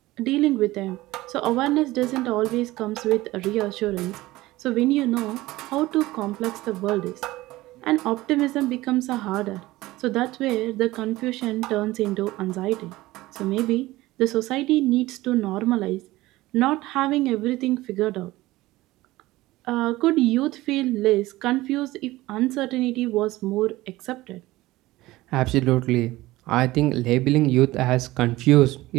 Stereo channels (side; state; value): left; quieter; 18.2 dB